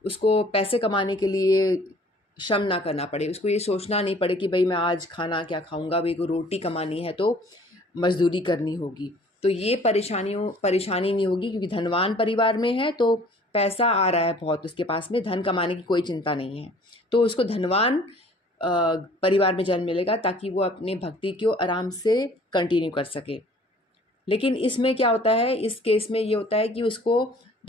उसको पैसे कमाने के लिए श्रम ना करना पड़े, उसको ये सोचना नहीं पड़े कि भाई मैं आज खाना क्या खाऊंगा, भाई को रोटी कमानी है तो मजदूरी करनी होगी। तो ये परेशानी नहीं होगी, क्योंकि धनवान परिवार में है तो पैसा आ रहा है बहुत उसके पास में, धन कमाने की कोई चिंता नहीं है। तो उसको धनवान परिवार में जन्म मिलेगा ताकि वो अपने भक्ति को आराम से कंटिन्यू कर सके। लेकिन इसमें क्या होता है, इस केस में ये होता है कि उसको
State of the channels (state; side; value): normal; both; correlation 0.53